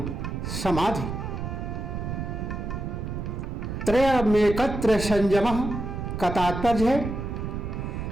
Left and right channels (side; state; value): right; noise; rumble, 5 dB below the sound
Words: समाधि। त्रयमेकत्र संयमः का तात्पर्य है